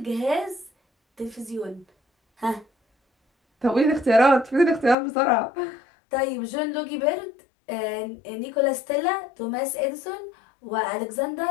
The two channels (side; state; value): right; drops out; at 5.0 s